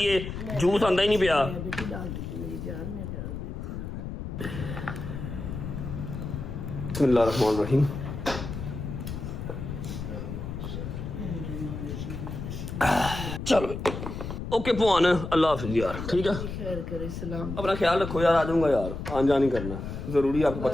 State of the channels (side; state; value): left; noise; rumble, 6 dB below the sound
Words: है, जूस आंदा ही नहीं पिया। बेटी डाल देती मेरी जान, मैं डाल देती हूँ। बिस्मिल्लाहिर्रहमानिर्रहीम। चलो ओके पुआन, अल्लाह हाफिज़ यार। ठीक है, खैर करे, सलाम। अपना ख्याल रखो यार। आ जाऊंगा यार, आन जान नहीं करना जरूरी, आपको